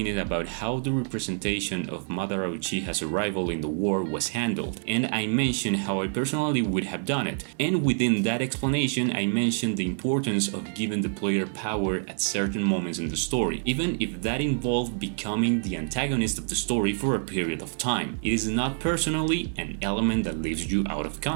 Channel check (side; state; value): left; silent; 60 dB below the other